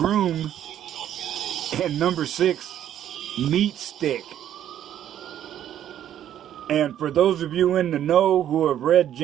and number 6, Meat Stick. And for those of you in the know who have read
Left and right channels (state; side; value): quieter; left; 10.9 dB